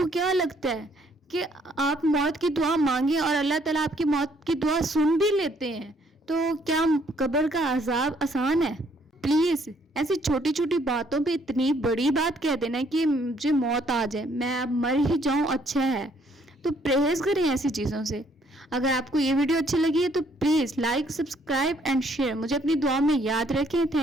کیا لگتا ہے کہ آپ موت کی دعا مانگیں اور اللہ تعالیٰ آپ کی موت کی دعا سن بھی لیتے ہیں؟ تو کیا قبر کا عذاب آسان ہے؟ پلیز ایسی چھوٹی چھوٹی باتوں پہ اتنی بڑی بات کہہ دینا کہ مجھے موت آ جائے، میں اب مر ہی جاؤں، اچھا ہے۔ تو پرہیز کریں ایسی چیزوں سے۔ اگر آپ کو یہ ویڈیو اچھی لگی ہے تو please like, subscribe and share. مجھے اپنی دعا میں یاد رکھیں۔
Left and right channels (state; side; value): normal; both; correlation 0.66